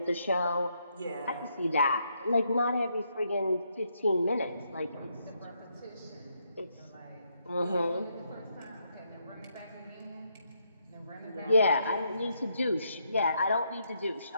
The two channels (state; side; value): inverted; both; correlation -0.77